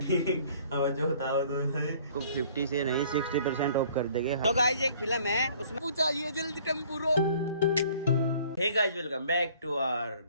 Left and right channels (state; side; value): inverted; both; correlation -0.55